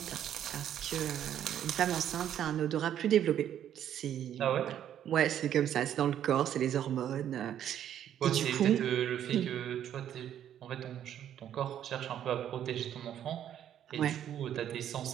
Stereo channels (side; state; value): left; quieter; 10.3 dB